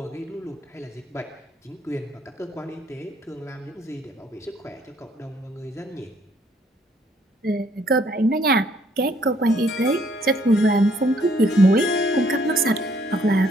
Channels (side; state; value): both; normal; correlation 0.66